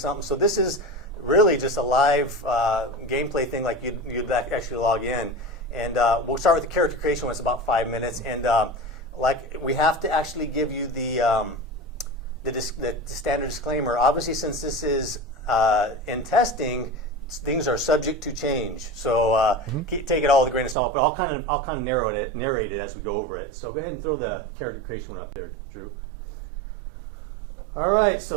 So this is really just a live gameplay thing, like you'd actually log in. And we'll start with the character creation when it's about 5 minutes. And like we have to actually give you the standard disclaimer. Obviously, since this is in testing, things are subject to change. So take it all with a grain of salt. But I'll kind of narrate it as we go over it. So go ahead and throw the character creation one up there, Drew. All right,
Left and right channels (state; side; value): drops out; left; at 20.8 s